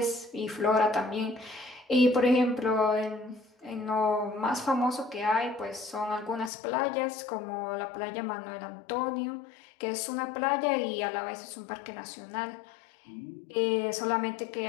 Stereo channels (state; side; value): drops out; right; at 6.5 s